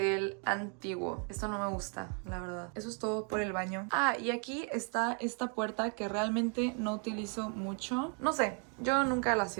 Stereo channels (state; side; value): quieter; left; 39.4 dB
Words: antiguo. Esto no me gusta, la verdad. Eso es todo por el baño. baño. Ah, y aquí está esta puerta que realmente no utilizo mucho. No sé, yo nunca la